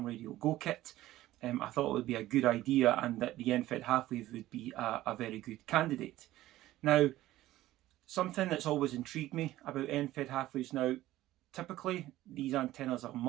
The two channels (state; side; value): quieter; left; 15.5 dB